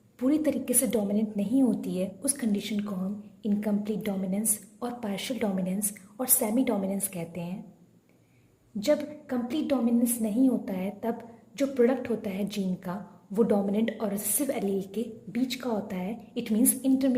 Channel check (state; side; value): identical; both; correlation 1.00